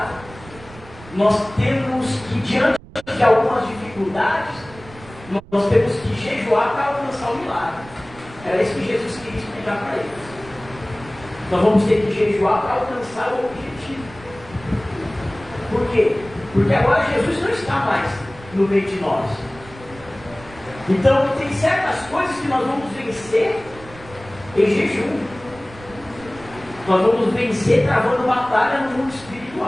nós temos que, diante de algumas dificuldades, nós temos que jejuar para alcançar o milagre. Era isso que Jesus queria explicar para eles. Nós vamos ter que jejuar para alcançar o objetivo. Por quê? Porque agora Jesus não está mais no meio de nós. Então tem certas coisas que nós vamos vencer em jejum. Nós vamos vencer travando batalha no mundo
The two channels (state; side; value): noise; right; rumble, 19 dB below the sound